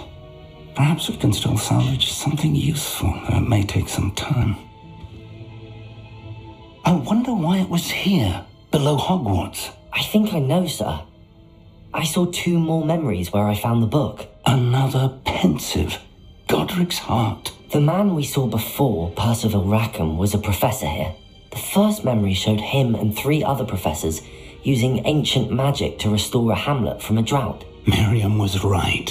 Perhaps we can still salvage something useful, though it may take some time. I wonder why it was here, below Hogwarts. I think I know, sir. I saw 2 more memories where I found the book. Another pensive. Godric's heart. The man we saw before, Percival Rackham, was a professor here. The first memory showed him and 3 other professors using ancient magic to restore a hamlet from a drought. Miriam was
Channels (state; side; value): identical; both; correlation 1.00